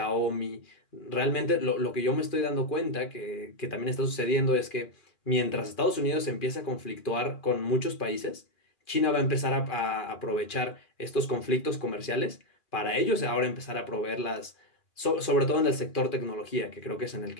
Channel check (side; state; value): right; late; 2.4 ms